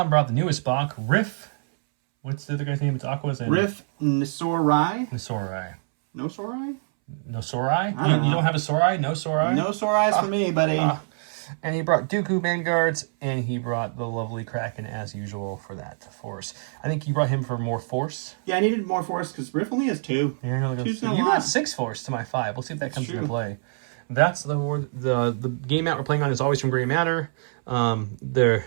brought the newest box, Riff. What's the other guy's name? It's Aqua's and Riff Nisorai. Nisorai. No Sorai? No Sorai? You don't have a Sorai? No Sorai? No Sorais for me, buddy. And he brought Dooku Vanguards, and he brought the lovely Kraken as usual for that Force. I think you brought him for more Force. Yeah, I needed more Force because Riff only has 2. Yeah, you got 6 Force to my 5. We'll see if that comes into play. That's the game mat we're playing on is always from Gray Matter. The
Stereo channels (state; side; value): silent; left; 62 dB below the other